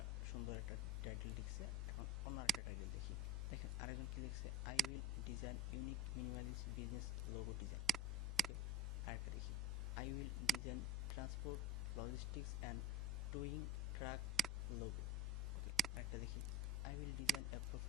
সুন্দর একটা টাইটেল লিখছে। এখন অন্য একটা টাইটেল দেখি, দেখেন আরেকজন কি লিখছে, I will design unique minimalist business logo design. Okay, আরেকটা দেখি, I will design transport logistics and towing truck logo. Okay, আরেকটা দেখি, I will design a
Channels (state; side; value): normal; both; correlation 0.32